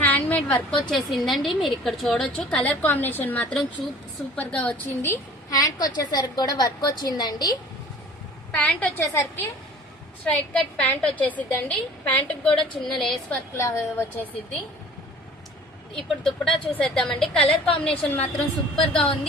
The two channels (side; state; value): both; normal; correlation 0.47